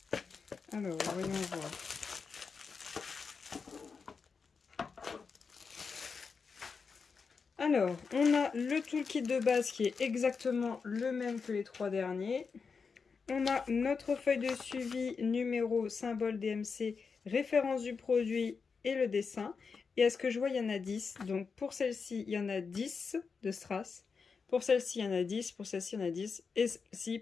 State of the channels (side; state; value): right; quieter; 5.3 dB